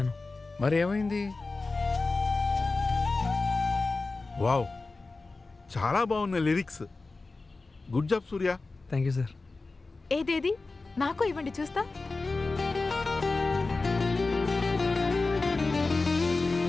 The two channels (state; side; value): quieter; right; 3.6 dB